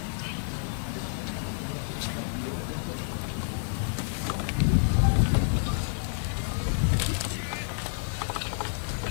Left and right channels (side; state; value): right; silent; digital silence